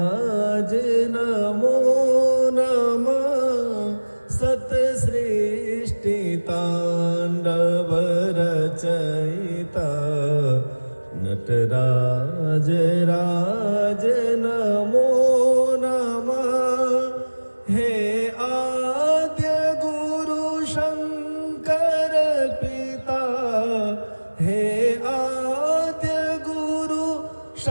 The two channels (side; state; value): both; inverted; correlation -1.00